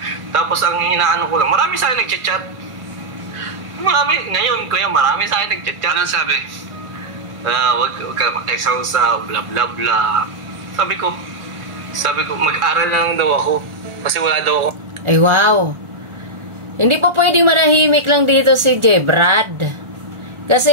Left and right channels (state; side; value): late; left; 1.4 ms